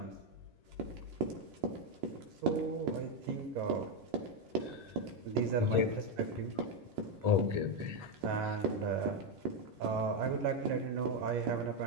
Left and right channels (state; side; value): late; left; 11 ms